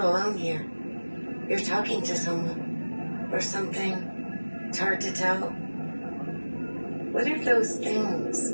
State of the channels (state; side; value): inverted; both; correlation -1.00